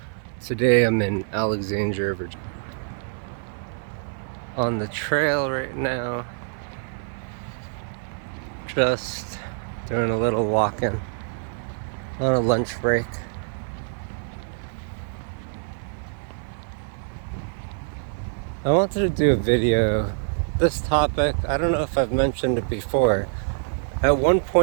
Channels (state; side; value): silent; left; 55 dB below the other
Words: Today I'm in Alexandria, Virginia. On the trail right now. Just doing a little walking on a lunch break. I wanted to do a video. This topic, I don't know if I've mentioned it before. At one